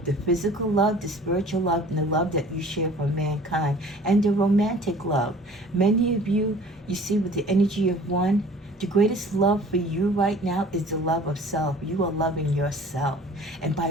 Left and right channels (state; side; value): normal; both; correlation 0.48